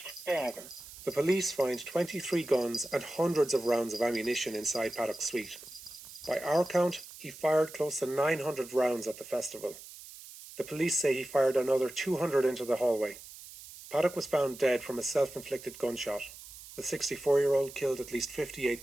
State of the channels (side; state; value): right; noise; hiss, 16 dB below the sound